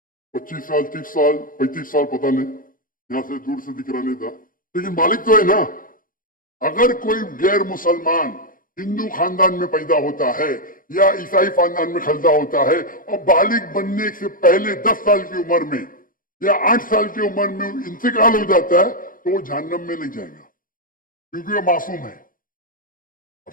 25 साल 30 साल 35 साल पता नहीं, यहां से दूर से दिख रहा नहीं था, लेकिन बालिग तो है ना। अगर कोई गैर मुसलमान हिंदू खानदान में पैदा होता है या ईसाई खानदान में पैदा होता है और बालिग बनने से पहले 10 साल की उम्र में या 8 साल की उम्र में इंतकाल हो जाता है तो वो जहन्नम में नहीं जाएगा, क्योंकि वो मासूम है। आप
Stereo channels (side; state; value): right; late; 0.40 ms